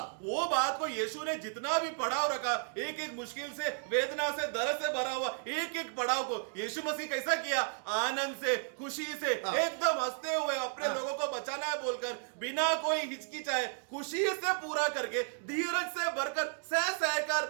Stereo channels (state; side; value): silent; left; digital silence